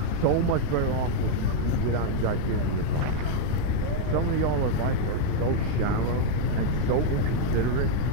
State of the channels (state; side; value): different; both; correlation 0.00